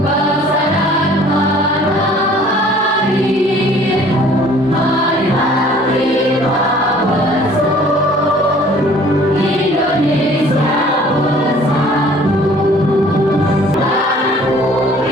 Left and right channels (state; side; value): normal; both; correlation 0.53